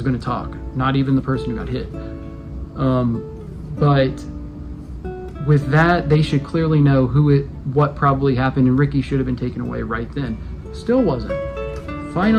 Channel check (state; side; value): identical; both; correlation 1.00